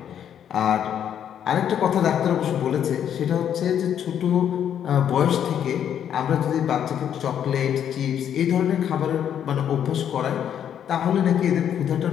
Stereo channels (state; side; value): quieter; right; 9.3 dB